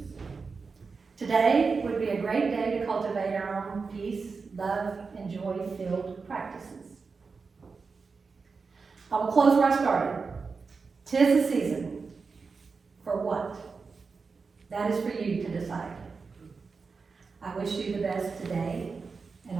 Today would be a great day to cultivate our own peace, love, and joy-filled practices. I will close where I started. 'Tis the season. For what? That is for you to decide. I wish you the best today and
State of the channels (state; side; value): quieter; left; 4.8 dB